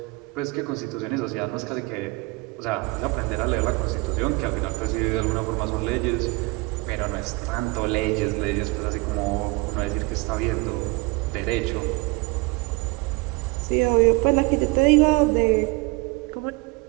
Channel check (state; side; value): quieter; left; 25.0 dB